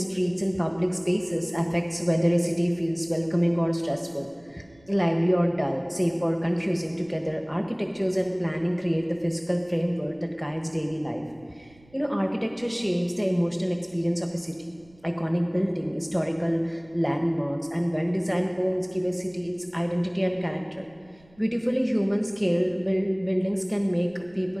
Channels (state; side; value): noise; right; rumble, 28 dB below the sound